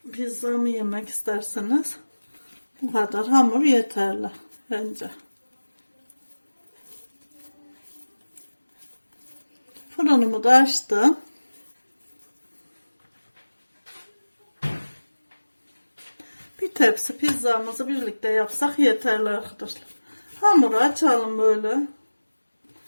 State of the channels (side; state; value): both; inverted; correlation -1.00